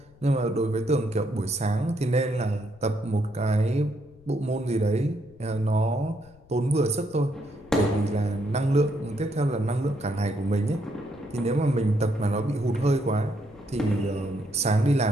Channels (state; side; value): noise; left; rumble, 27 dB below the sound